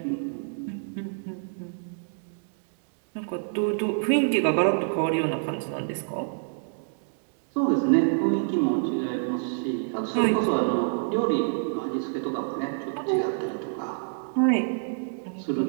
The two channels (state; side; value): silent; left; digital silence